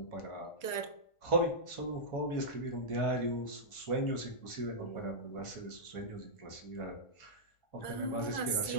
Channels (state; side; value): late; right; 1.4 ms